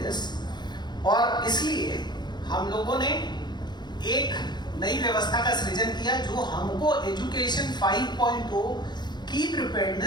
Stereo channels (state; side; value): late; right; 0.21 ms